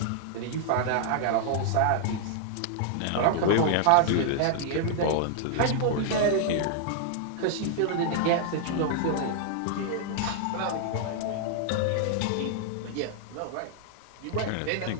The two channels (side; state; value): both; different; correlation -0.01